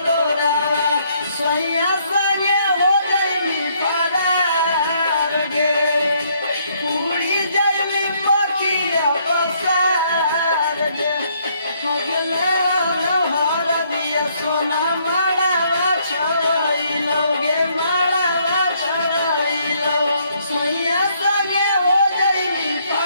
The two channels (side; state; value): both; inverted; correlation -0.69